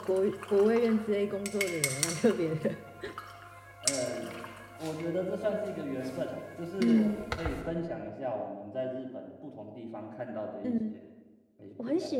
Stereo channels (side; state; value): both; identical; correlation 1.00